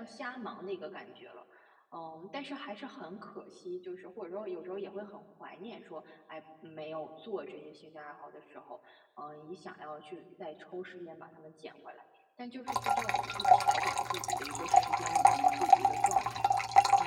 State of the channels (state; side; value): identical; both; correlation 1.00